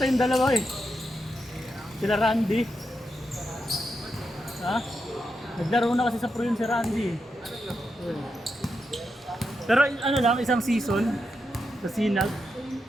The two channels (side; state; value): both; normal; correlation 0.85